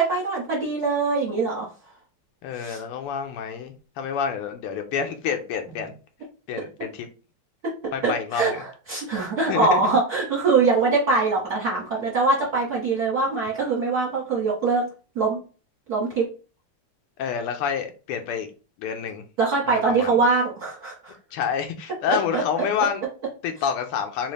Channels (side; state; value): both; normal; correlation 0.09